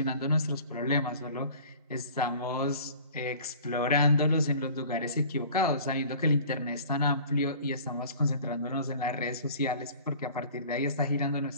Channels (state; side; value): inverted; both; correlation -0.46